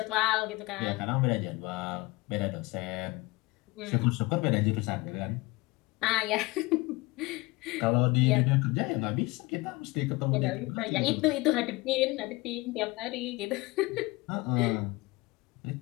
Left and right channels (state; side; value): quieter; right; 22.9 dB